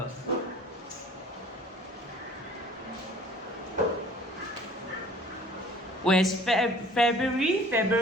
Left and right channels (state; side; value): normal; both; correlation 0.51